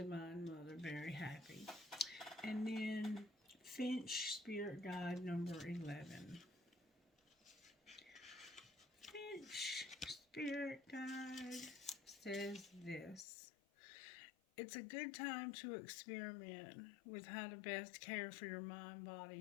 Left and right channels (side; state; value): right; drops out; at 13.2 s